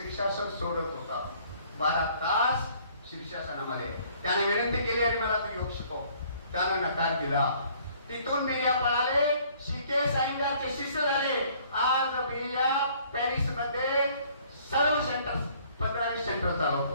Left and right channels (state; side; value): inverted; both; correlation -0.59